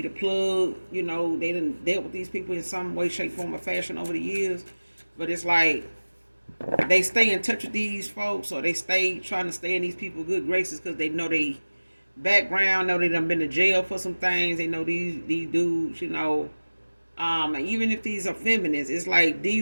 plug. They done dealt with these people in some way, shape, form, or fashion over the years. But it's like they stay in touch with these folks, or they stay trying to stay in these people's good graces because they know they background, know they done been to jail for some things. They know these dudes, even if these are feminists, it's like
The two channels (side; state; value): both; inverted; correlation -1.00